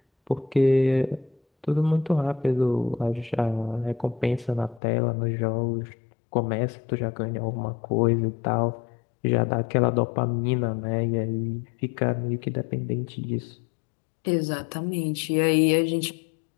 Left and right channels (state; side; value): drops out; right; at 4.8 s